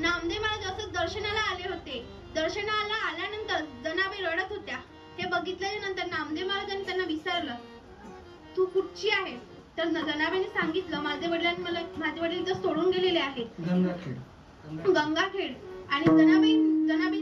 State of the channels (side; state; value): both; identical; correlation 1.00